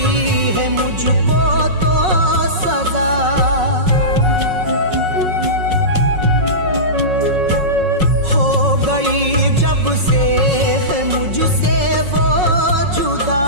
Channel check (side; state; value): left; late; 5.4 ms